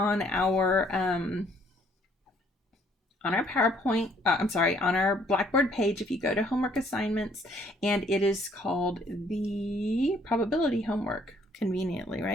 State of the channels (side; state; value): both; normal; correlation 0.64